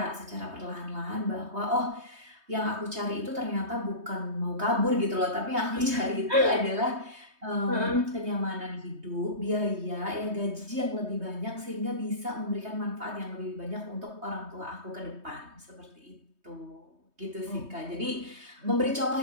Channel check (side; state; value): left; late; 3.2 ms